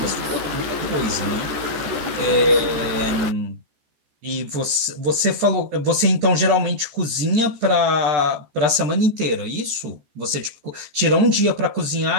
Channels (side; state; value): left; late; 14 ms